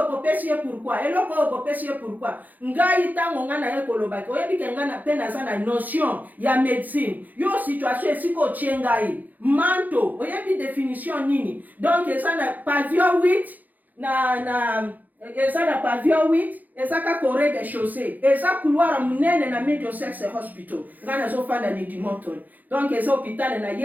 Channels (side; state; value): left; late; 0.082 ms